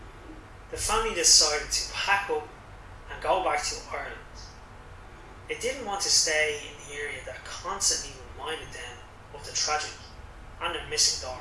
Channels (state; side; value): identical; both; correlation 1.00